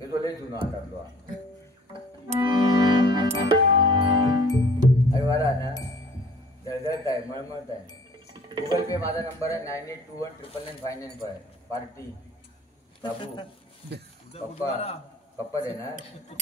तो लई जुनो हातातलो अरे वारा ना जळजळत आहे मळमळत आहे गुगल पे माझा नंबर आहे 9821999595 पार्टी बाबू पप्पा दे ना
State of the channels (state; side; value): normal; both; correlation 0.52